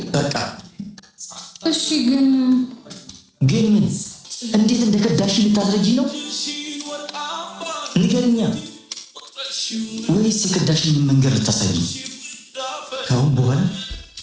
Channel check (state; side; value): identical; both; correlation 1.00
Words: በቃ እሺ ግን ምን እንዴት እንደከዳሽ ልታስረጂ ነው? ንገርኛ። ወይስ የከዳሽን መንገድ ልታሳይ? ከአሁን በኋላ